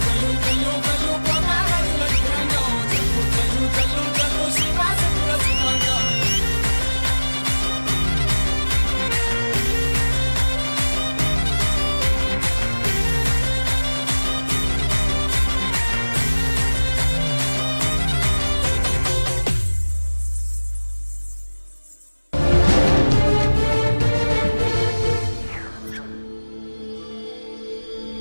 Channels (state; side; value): inverted; both; correlation -1.00